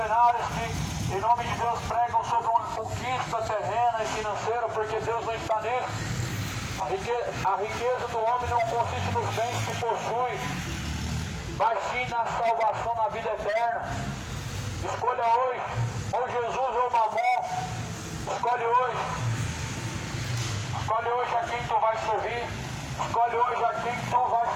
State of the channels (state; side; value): identical; both; correlation 1.00